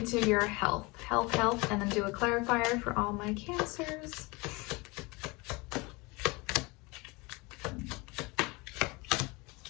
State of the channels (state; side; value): quieter; right; 25.5 dB